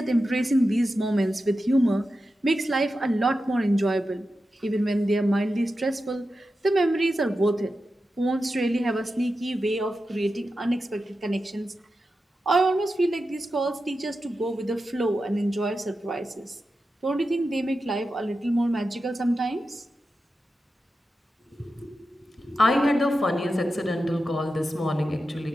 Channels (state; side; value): normal; both; correlation 0.91